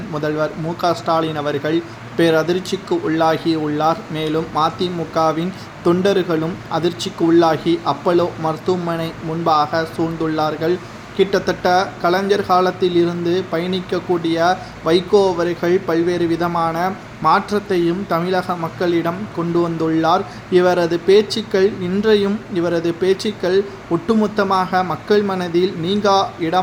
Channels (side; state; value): both; identical; correlation 1.00